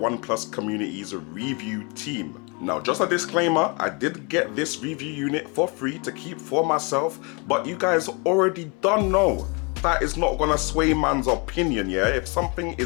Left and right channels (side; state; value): right; quieter; 31.3 dB